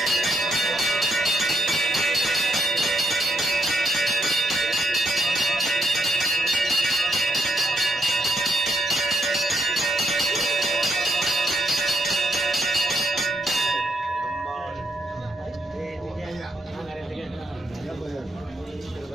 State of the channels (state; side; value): normal; both; correlation 0.79